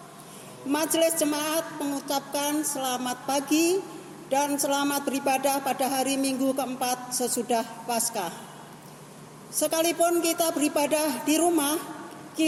Majelis Jemaat mengucapkan selamat pagi dan selamat beribadah pada hari Minggu keempat sesudah Paskah. Sekalipun kita beribadah di rumah,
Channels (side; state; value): both; identical; correlation 1.00